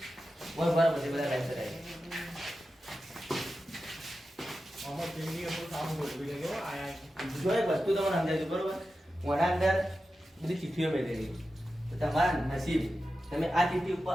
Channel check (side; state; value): both; normal; correlation 0.92